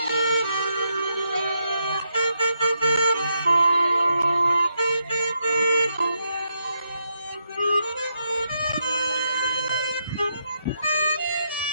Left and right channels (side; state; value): both; inverted; correlation -0.80